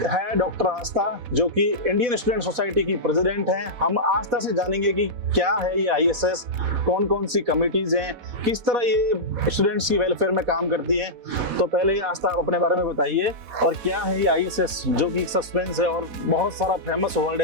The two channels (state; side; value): late; left; 4.1 ms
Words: है डॉक्टर आस्था जो कि इंडियन स्टूडेंट सोसाइटी की प्रेसिडेंट हैं। हम आस्था से जानेंगे कि क्या है ये ISS, कौन कौन सी कमिटीज हैं, किस तरह ये स्टूडेंट्स की वेलफेयर में काम करती हैं। तो पहले आस्था आप अपने बारे में बताइए और क्या है ये ISS जो कि सस्पेंस है और बहुत सारा फेमस वर्ड